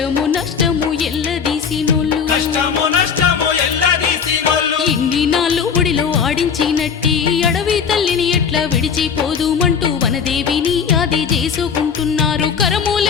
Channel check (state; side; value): quieter; right; 6.6 dB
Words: నష్టము ఎల్లదీసినోళ్ళు కష్టము నష్టము ఎల్లదీసినోళ్ళు ఇన్ని నాళ్ళు ఒడిలో ఆడించినట్టి అడవి తల్లిని ఎట్లా విడిచిపోదుమంటూ వనదేవిని ఆది చేసుకుంటున్నారు